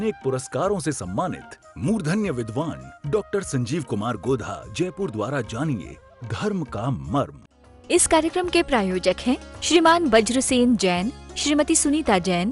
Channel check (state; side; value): identical; both; correlation 1.00